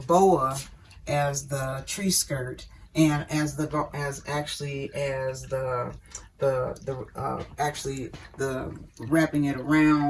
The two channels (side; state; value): both; identical; correlation 1.00